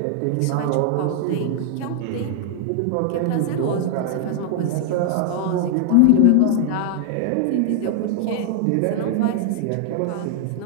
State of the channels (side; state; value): both; different; correlation 0.00